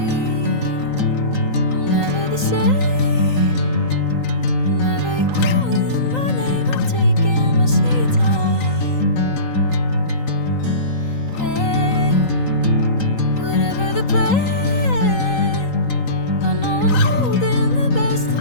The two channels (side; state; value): right; late; 3.9 ms